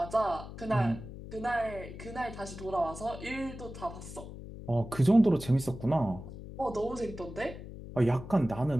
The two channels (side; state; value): left; noise; hum, 12 dB below the sound